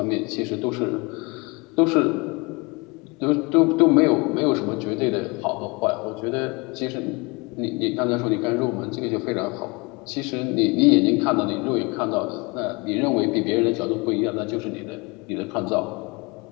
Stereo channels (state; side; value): quieter; right; 27.3 dB